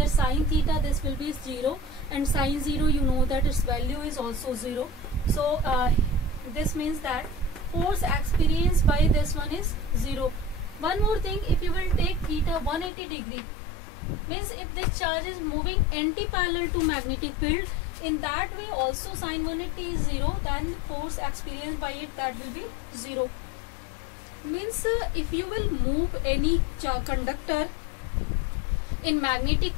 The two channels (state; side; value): drops out; right; at 12.9 s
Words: sin theta this will be 0, and sin 0 you know that its value is also 0. So this means that force experienced by this one is 0. One more thing, if you will take theta 180 degree, means if this charge is moving anti-parallel to magnetic field, in that way also sin 180 is 0, then force experienced by it, that will be 0. Means if you will move any conductor in magnetic